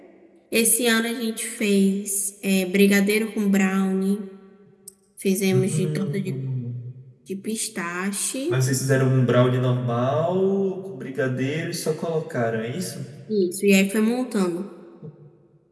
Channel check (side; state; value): both; identical; correlation 1.00